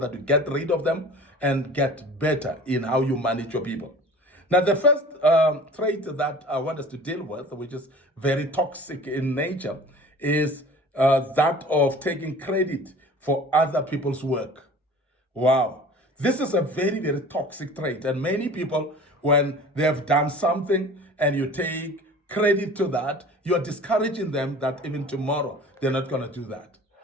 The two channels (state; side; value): normal; both; correlation 0.43